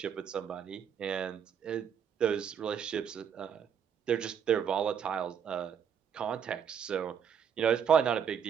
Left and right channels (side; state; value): left; quieter; 7.8 dB